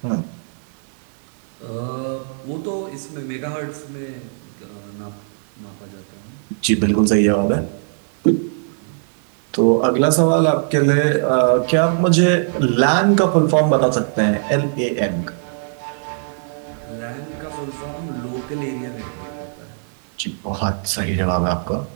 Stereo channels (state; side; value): silent; left; 62 dB below the other